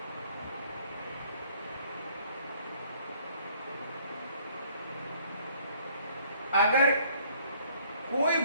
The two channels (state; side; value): inverted; both; correlation -0.61